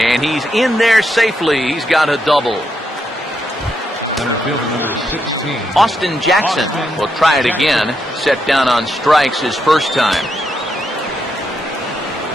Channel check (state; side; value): normal; both; correlation 0.81